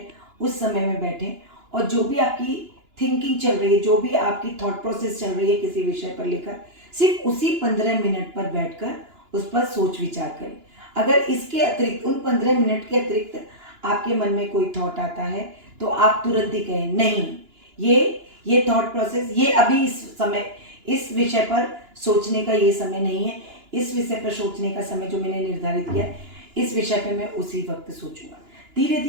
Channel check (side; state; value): left; late; 2.9 ms